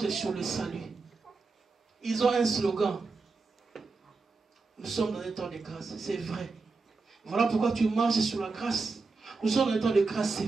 sur le salut. Ils ont un slogan. Nous sommes dans un temps de grâce, c'est vrai. Voilà pourquoi tu marches sur la grâce. Nous sommes dans un temps de grâce,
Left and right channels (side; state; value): left; quieter; 4.1 dB